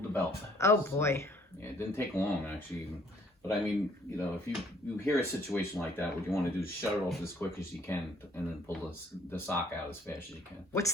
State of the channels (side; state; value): both; normal; correlation 0.61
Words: the belt. Oh boy. So, yeah, it didn't take long actually, but I mean, you know, if you hear a situation like that, what you want to do is shut it off as quick as you can, and then pull the sock out as fast as you can. What's